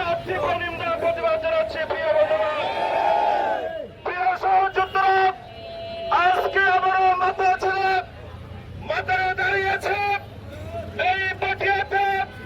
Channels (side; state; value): both; identical; correlation 1.00